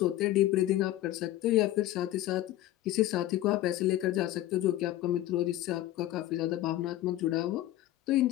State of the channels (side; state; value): right; quieter; 14.7 dB